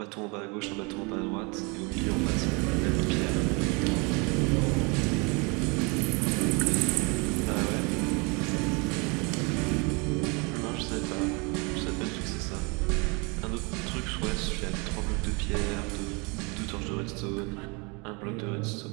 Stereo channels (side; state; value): left; quieter; 30.3 dB